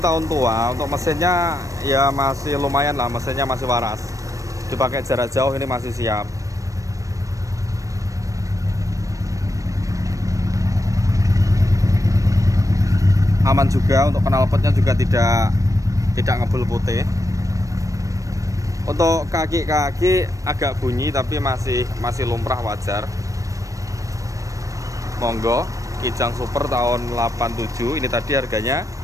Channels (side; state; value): left; late; 0.16 ms